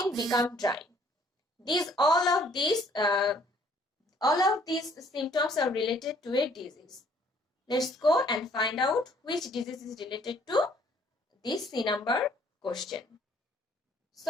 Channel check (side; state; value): both; normal; correlation 0.61